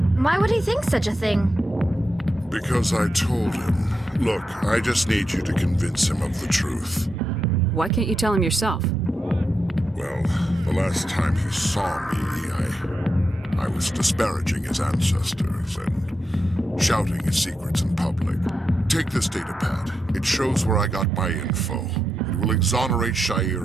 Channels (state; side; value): normal; both; correlation 0.86